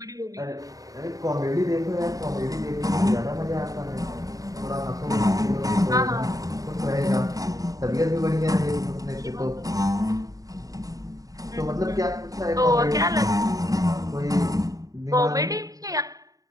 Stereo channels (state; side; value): late; left; 0.17 ms